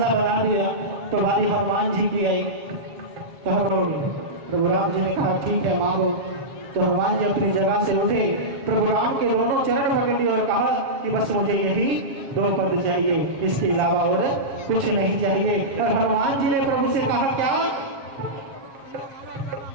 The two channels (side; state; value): left; late; 7.4 ms